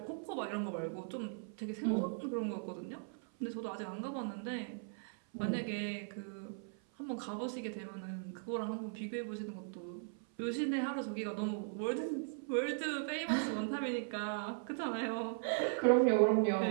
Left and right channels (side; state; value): left; silent; 52 dB below the other